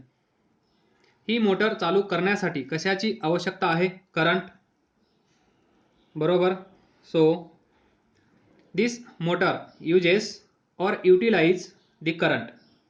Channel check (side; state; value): both; identical; correlation 1.00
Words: ही मोटर चालू करण्यासाठी कशाची आवश्यकता आहे? करंट, बरोबर. So this motor uses or utilize the current,